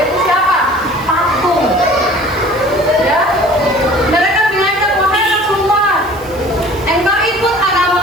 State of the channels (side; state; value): right; noise; hiss, 22 dB below the sound